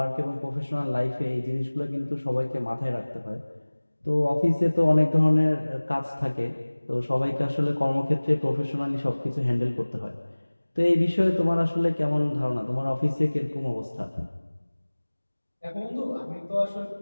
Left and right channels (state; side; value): inverted; both; correlation -1.00